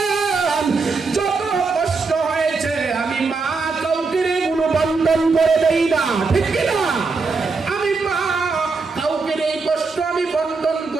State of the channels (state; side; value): quieter; left; 4.3 dB